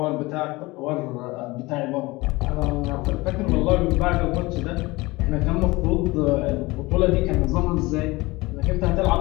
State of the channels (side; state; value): right; quieter; 21.9 dB